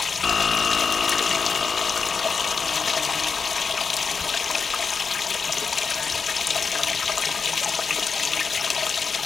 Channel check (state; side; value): quieter; right; 5.3 dB